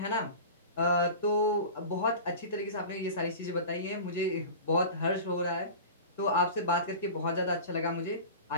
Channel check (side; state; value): both; inverted; correlation -0.34